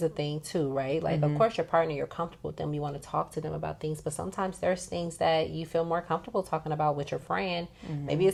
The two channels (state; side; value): identical; both; correlation 1.00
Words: a thing too, right? Like, of course, your partner, you're comfortable with them. You want to talk to them about things. But sometimes there's things that you feel more comfortable talking about with your friend. Maybe